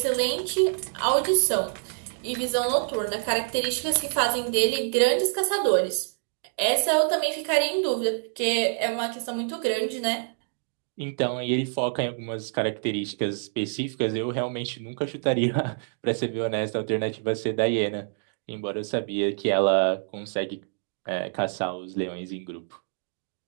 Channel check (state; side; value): silent; left; digital silence